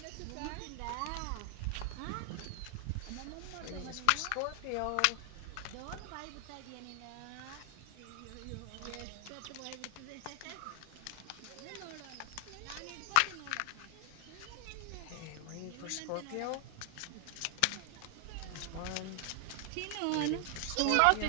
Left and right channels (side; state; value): both; different; correlation 0.00